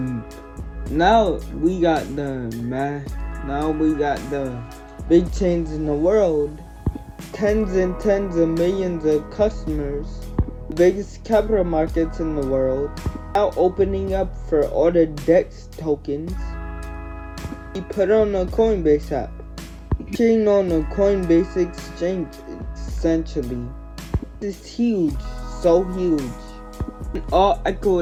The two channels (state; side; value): identical; both; correlation 1.00